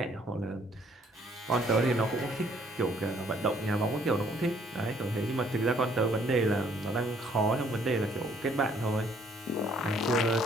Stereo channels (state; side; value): normal; both; correlation 0.63